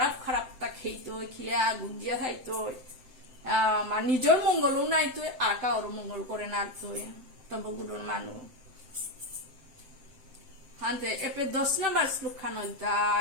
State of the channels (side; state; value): left; late; 7.8 ms